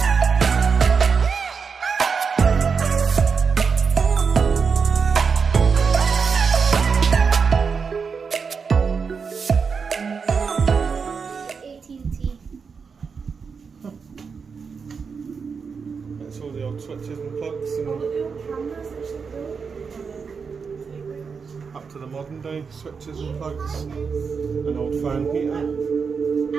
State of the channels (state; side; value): quieter; left; 5.6 dB